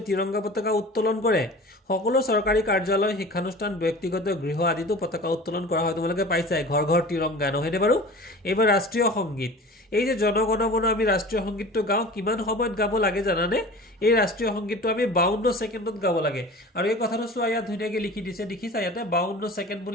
তিৰংগা পতাকা উত্তোলন কৰে সকলো চৰকাৰী কাৰ্যালয় শিক্ষানুষ্ঠান ব্যক্তিগত গৃহ আদিতো পতাকা উত্তোলন কৰা হয় তোমালোকে পাইছাই ঘৰ ঘৰ তিৰংগা নহয়নে বাৰু এইবাৰ ৰাষ্ট্ৰীয় সংগীত এই যে জনগণমন আমি ৰাষ্ট্ৰীয় সংগীতটো গাওঁ কিমান সময়ত গাব লাগে জানানে এই ৰাষ্ট্ৰীয় সংগীতটো আমি 52 ছেকেণ্ডত গাব লাগে আৰু এই কথাটো চোৱা ইয়াত ধুনীয়াকৈ লিখি দিছে দেখিছা ইয়াতে 52 ছেকেণ্ড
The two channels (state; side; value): normal; both; correlation 0.39